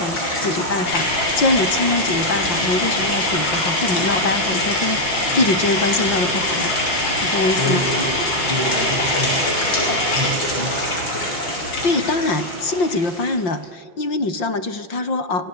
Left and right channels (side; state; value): right; late; 5.7 ms